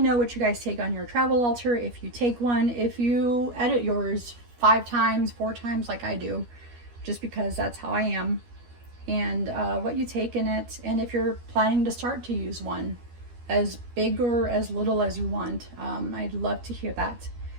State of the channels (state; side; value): late; left; 12 ms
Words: know what you guys take on your travel altar, if you take one, if you edit yours 5 times, 4 times like I do, just because that's how I am, and what you take in it, and if you're planning to start to use one, as big or as little as you want. I'd love to hear that.